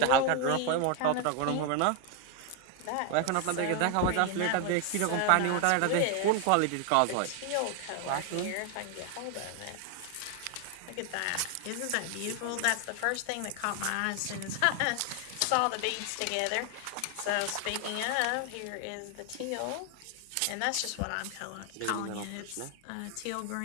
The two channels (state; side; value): different; both; correlation 0.00